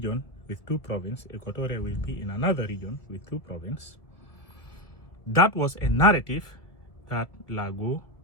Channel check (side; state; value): right; late; 1.8 ms